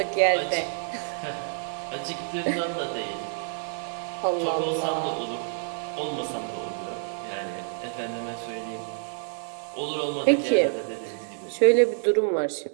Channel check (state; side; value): silent; left; digital silence